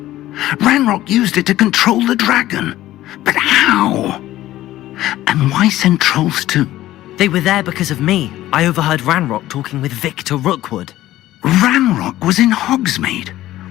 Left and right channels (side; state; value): right; quieter; 14.9 dB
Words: Ranrock used it to control the dragon. But how? And why send trolls to... They were there because of me. I overheard Ranrock talking with Victor Rookwood. Ranrock was in Hogsmeade?